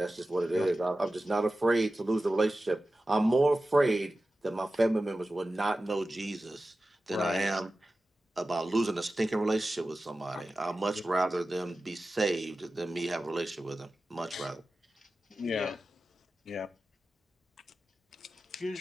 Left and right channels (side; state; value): both; normal; correlation 0.95